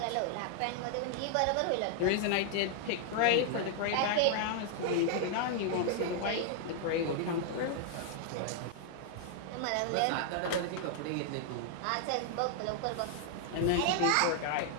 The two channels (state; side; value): different; both; correlation 0.00